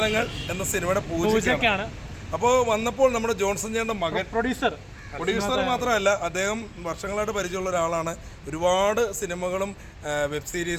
എന്ന സിനിമയുടെ പൂജയ്ക്കാണ്. അപ്പോൾ വന്നപ്പോൾ നമ്മുടെ ജോൺസൺ ചേട്ടൻ്റെ മകൻ പ്രൊഡ്യൂസർ മാത്രമല്ല, അദ്ദേഹം വർഷങ്ങളായിട്ട് പരിചയമുള്ള ഒരാളാണ്. ഒരുപാട് സിനിമകളും വെബ്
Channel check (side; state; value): both; identical; correlation 1.00